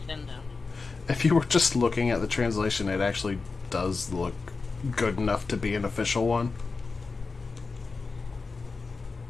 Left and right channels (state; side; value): quieter; right; 4.2 dB